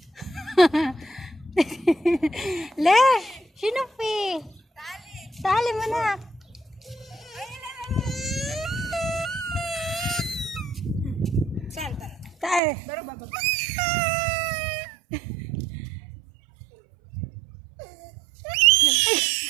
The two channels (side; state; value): left; drops out; at 12.6 s